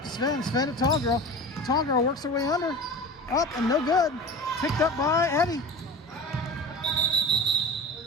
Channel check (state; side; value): normal; both; correlation 0.33